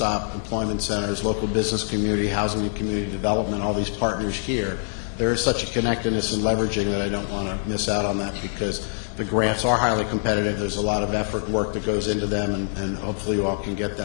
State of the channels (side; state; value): right; silent; digital silence